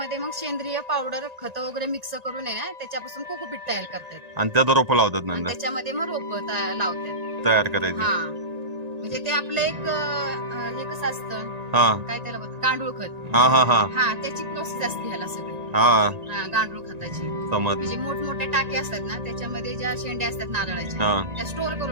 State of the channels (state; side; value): late; left; 1.9 ms